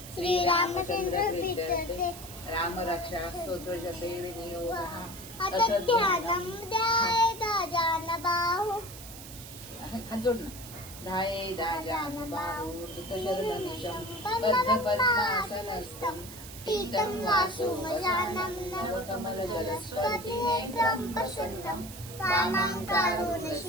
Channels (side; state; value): right; noise; hiss, 14 dB below the sound